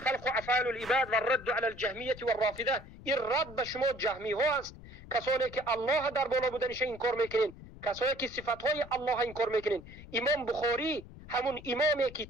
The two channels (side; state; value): left; noise; rumble, 17 dB below the sound